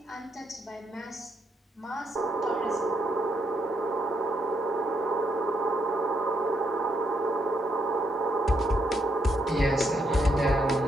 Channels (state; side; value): normal; both; correlation 0.77